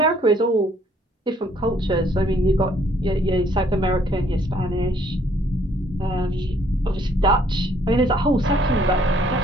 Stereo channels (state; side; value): normal; both; correlation 0.64